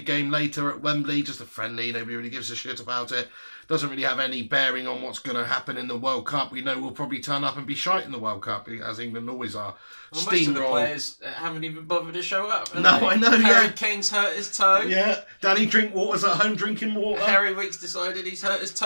game later at Wembley. Just a friendly. Nobody really gives a shit about it. Doesn't really have any bearing on what's going to happen in the World Cup. We know we'll probably turn up and be shite in the World Cup, as England always are. Well, most of the players haven't even bothered to show up. No, I know, Harry Kane's hurt his toe. Yeah, Danny Drinkwater's at home drinking water. Harry Weeks decided he's hurt his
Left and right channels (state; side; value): inverted; both; correlation -1.00